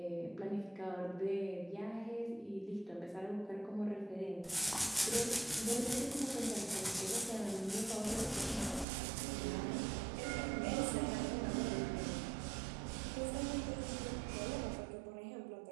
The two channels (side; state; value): left; drops out; at 8.8 s